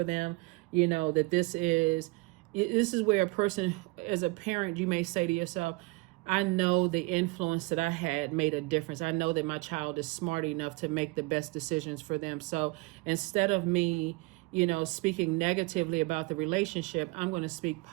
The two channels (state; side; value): quieter; left; 25.1 dB